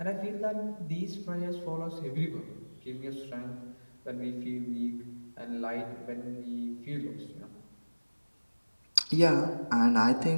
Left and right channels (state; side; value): inverted; both; correlation -1.00